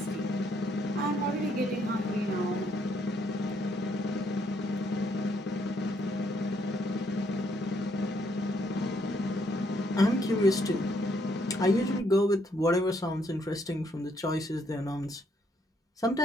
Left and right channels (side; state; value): both; normal; correlation 0.71